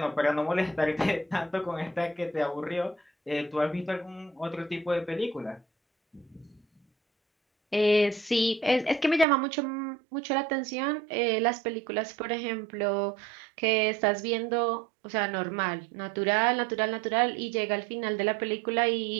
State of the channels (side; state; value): left; drops out; at 9.2 s